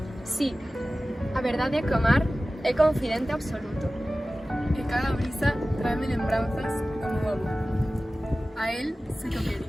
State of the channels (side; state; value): both; normal; correlation 0.96